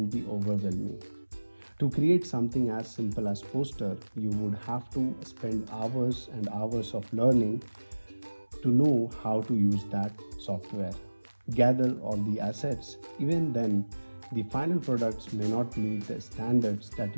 be overwhelming. To create something as simple as poster, you would have to spend hours and hours of learning to know how to use that software. Gather all the assets. Even then, the final products may not meet the standards that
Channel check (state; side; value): inverted; both; correlation -1.00